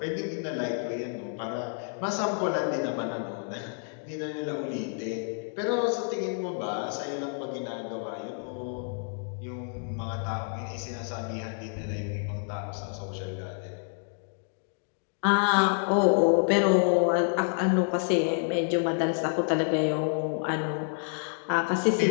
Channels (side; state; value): right; silent; 59 dB below the other